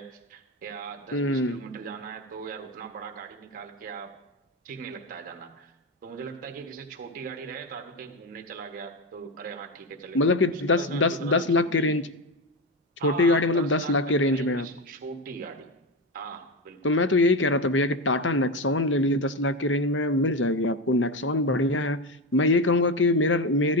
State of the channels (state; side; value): normal; both; correlation 0.16